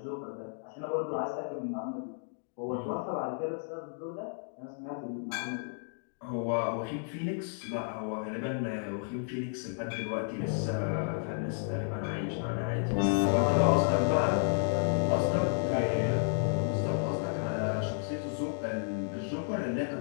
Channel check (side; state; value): right; silent; digital silence